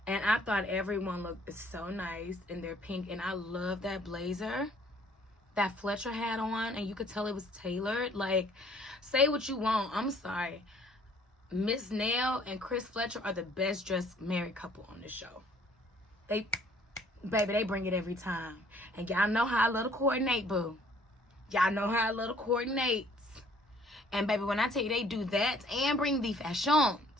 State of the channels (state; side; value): normal; both; correlation 0.59